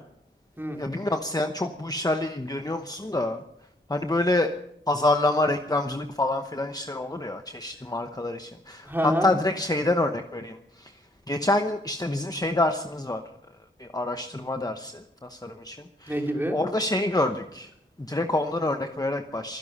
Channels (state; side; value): normal; both; correlation 0.65